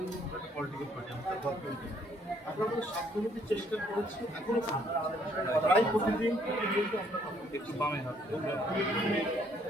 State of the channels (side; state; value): both; normal; correlation 0.66